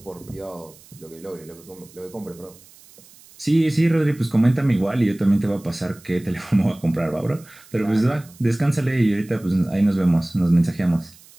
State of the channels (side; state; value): right; noise; hiss, 24 dB below the sound